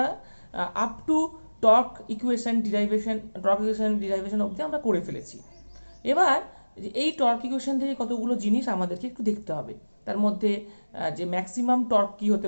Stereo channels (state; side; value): inverted; both; correlation -1.00